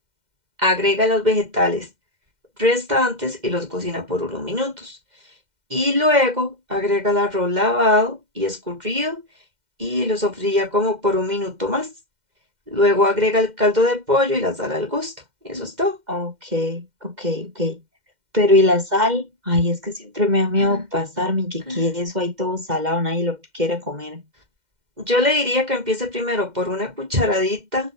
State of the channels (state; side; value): late; left; 2.1 ms